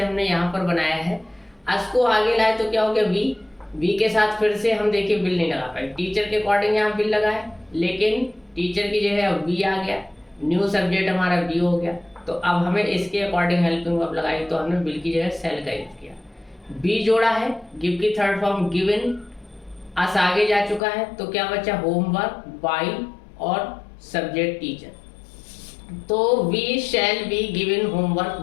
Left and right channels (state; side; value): drops out; right; at 20.8 s